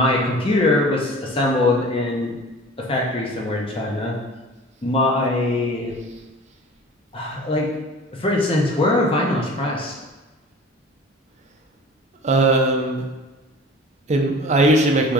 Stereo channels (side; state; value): both; normal; correlation 0.42